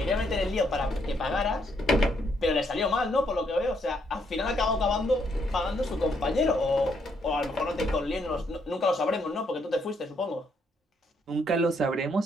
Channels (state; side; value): normal; both; correlation 0.73